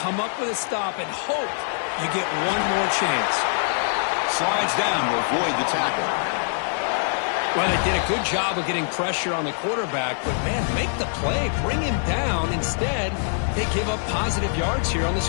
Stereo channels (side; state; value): right; silent; 63 dB below the other